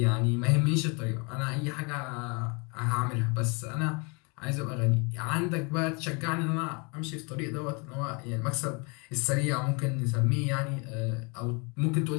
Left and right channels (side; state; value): right; quieter; 31.7 dB